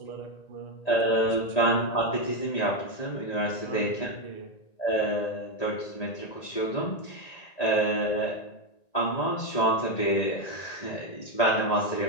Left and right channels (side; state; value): right; late; 1.9 ms